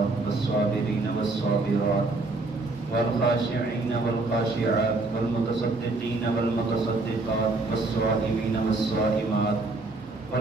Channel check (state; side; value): quieter; left; 3.3 dB